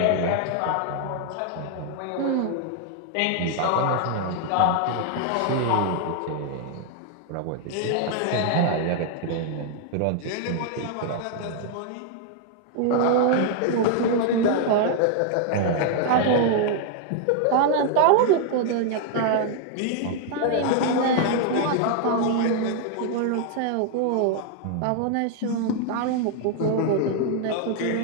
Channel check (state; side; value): different; both; correlation 0.00